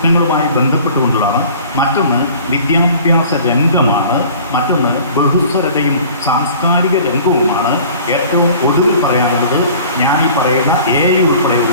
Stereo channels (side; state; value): both; inverted; correlation -0.46